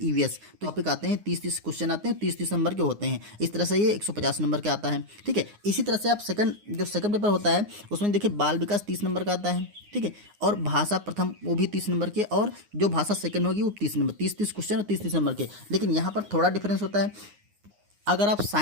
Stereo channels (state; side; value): late; left; 9.6 ms